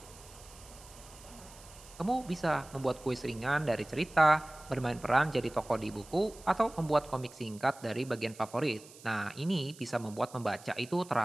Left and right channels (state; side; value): noise; right; hiss, 20 dB below the sound